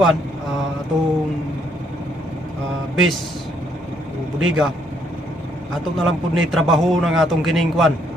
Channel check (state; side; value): normal; both; correlation 0.70